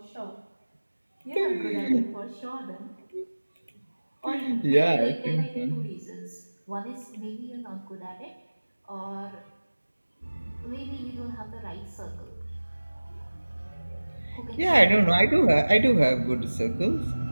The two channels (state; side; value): inverted; both; correlation -1.00